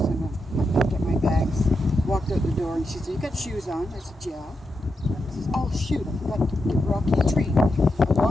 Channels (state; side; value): normal; both; correlation 0.86